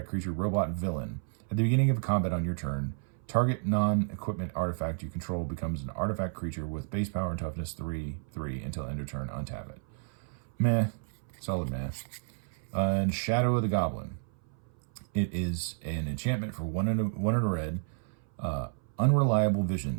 creature, robot villain. At the beginning of combat on your turn, target non-equipment artifact you control becomes an artifact creature with base power and toughness 3/3 until end of turn. Untap it. Meh, solid meh. And Shadow of the Goblin. It is an enchantment for one in a red. Unreliable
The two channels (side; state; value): left; silent; 57 dB below the other